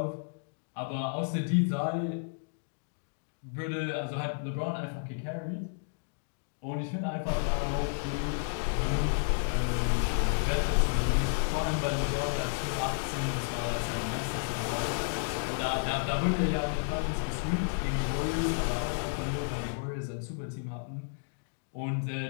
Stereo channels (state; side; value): silent; right; digital silence